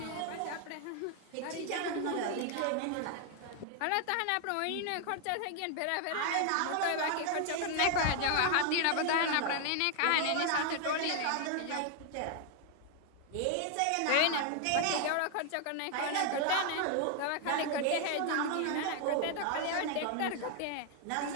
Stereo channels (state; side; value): different; both; correlation 0.00